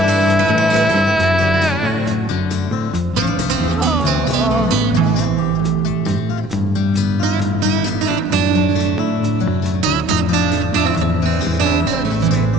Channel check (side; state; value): both; normal; correlation 0.56